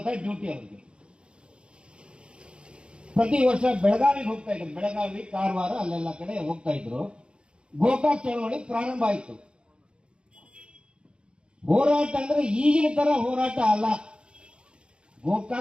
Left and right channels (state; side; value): late; left; 0.055 ms